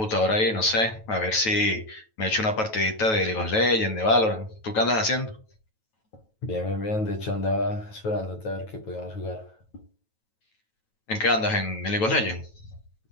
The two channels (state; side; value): late; right; 9.2 ms